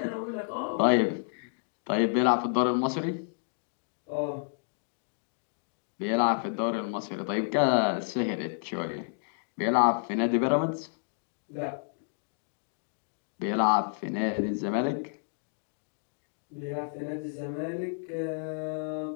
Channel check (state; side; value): silent; right; digital silence